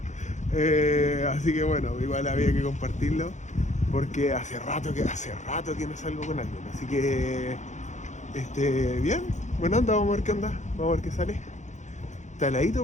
Así que bueno, igual había que compartirlo, porque hace rato que no salgo con alguien. Así que bien, bueno, anda, vamos a ver qué onda, vamos a ver qué sale. Está heladito,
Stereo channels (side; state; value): right; late; 0.35 ms